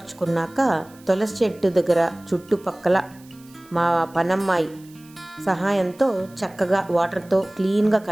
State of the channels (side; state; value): right; noise; hiss, 26 dB below the sound